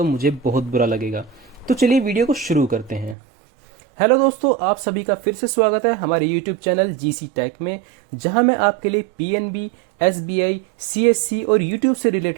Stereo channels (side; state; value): left; drops out; at 3.2 s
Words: मुझे बहुत बुरा लगेगा। तो चलिए वीडियो को शुरू करते हैं। हेलो दोस्तों, आप सभी का फिर से स्वागत है हमारे यूट्यूब चैनल जीसी टेक में, जहां मैं आपके लिए पीएनबी, एसबीआई, सीएससी और यूट्यूब से